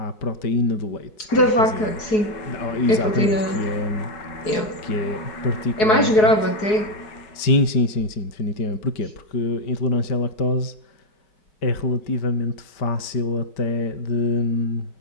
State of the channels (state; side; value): late; right; 4.7 ms